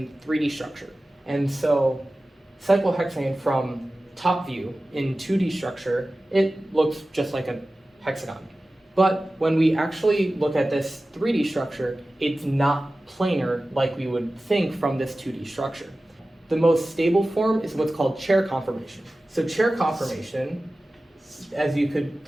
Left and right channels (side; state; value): both; normal; correlation 0.96